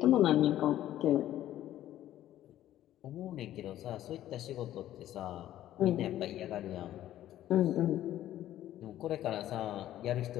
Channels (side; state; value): right; quieter; 12.9 dB